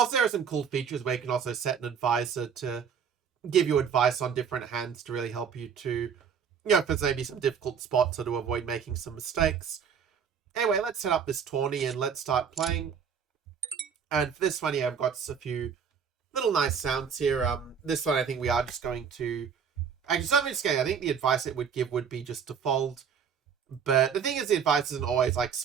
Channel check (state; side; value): quieter; left; 7.0 dB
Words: there are some cool features where you can also set an advisor to give you advice on different hands to really help you to, if there's maybe some difficult spots or to avoid making some mistakes. Anyway, let's set up this tourney and let's start playing. And for this one, I've got a few little nice sounds here. This one, I think we are just going to, actually, something scary. I think the advice it would give would be just to fold. But the thing is, the advice isn't always like